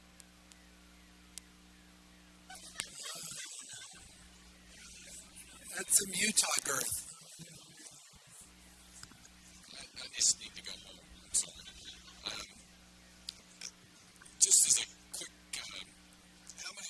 That's some Utah girth. I just need to go home. I'm sorry. Just as a quick, how many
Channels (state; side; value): identical; both; correlation 1.00